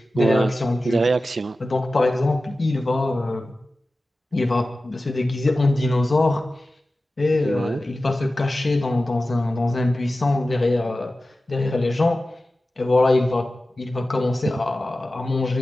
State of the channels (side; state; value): both; normal; correlation 0.95